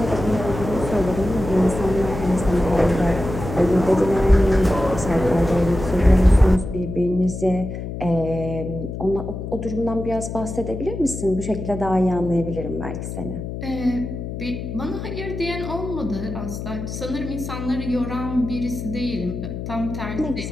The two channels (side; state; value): left; noise; hum, 7 dB below the sound